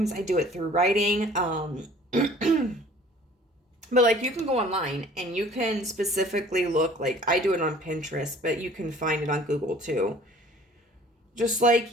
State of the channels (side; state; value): both; normal; correlation 0.50